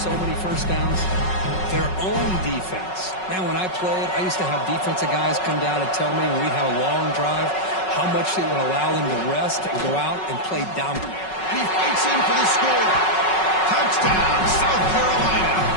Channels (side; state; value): right; late; 5.4 ms